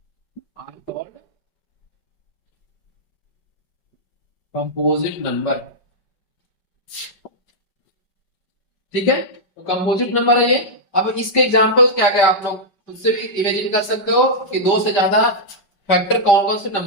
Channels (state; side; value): late; right; 5.2 ms